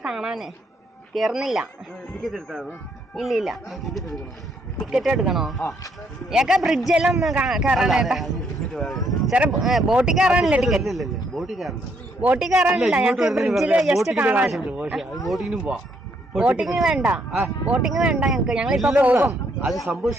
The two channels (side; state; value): both; normal; correlation 0.72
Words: കാണാനേ കയറുന്നില്ല. ഇല്ല ഇല്ല, ടിക്കറ്റ് എടുക്കണോ? ഏക്കാ ബ്രിഡ്ജെല്ലാം ഒന്ന് കയറാനേട്ടാ. ചെറിയ ബോട്ടിൽ കയറാനില്ല ടിക്കറ്റ്. ബോട്ടിൽ കയറാനില്ല, ഞങ്ങൾക്ക് ബ്രിഡ്ജിൽ ജസ്റ്റ് കാണാൻ. ബോട്ടിങ് വേണ്ട, ബോട്ടിങ് വേണ്ട ഞങ്ങൾക്ക്. ഞങ്ങളിപ്പോ പോകും. അത് സംഭവം